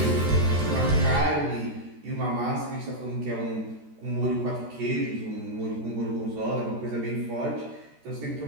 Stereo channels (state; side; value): late; left; 13 ms